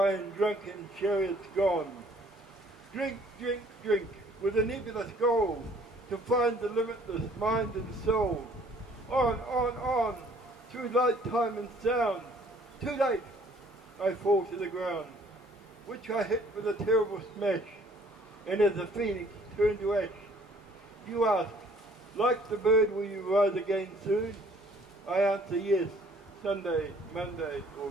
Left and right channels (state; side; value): normal; both; correlation 0.58